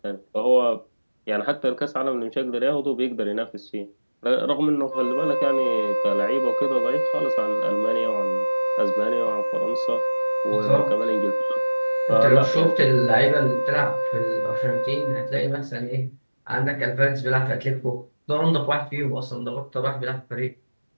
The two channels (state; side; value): inverted; both; correlation -1.00